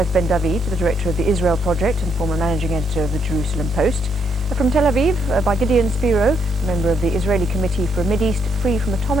Ben David, the director of the Israel Project and former managing editor of the Jerusalem Post. From Tel Aviv, by Gideon Spiro, member of the Israeli Committee for a Mideast free from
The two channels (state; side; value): normal; both; correlation 0.75